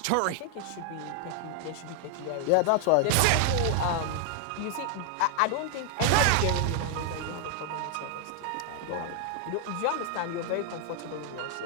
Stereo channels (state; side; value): different; both; correlation 0.00